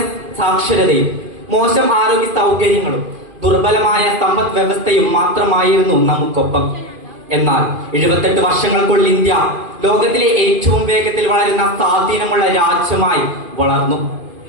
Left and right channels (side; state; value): left; late; 2.5 ms